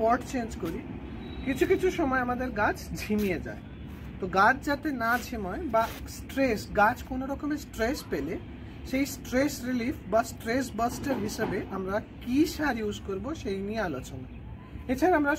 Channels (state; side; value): identical; both; correlation 1.00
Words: পট চেঞ্জ করি, কিছু কিছু সময় আমাদের গাছ ঝিমিয়ে যায়। তো গাছ যাতে না ঝিমায় বা স্ট্রেস, গাছ কোনো রকমের স্ট্রেস পেলে সেই স্ট্রেস রিলিফ বা স্ট্রেস বাস্টার হিসেবে আমরা কি সার ইউজ করব সেই নিয়ে আলোচনা। এছাড়া আমরা